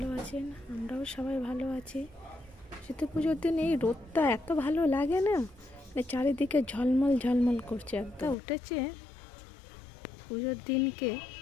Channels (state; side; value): drops out; right; at 8.3 s